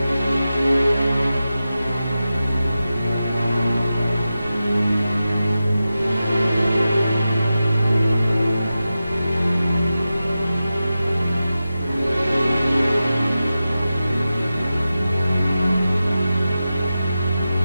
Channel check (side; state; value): both; inverted; correlation -0.93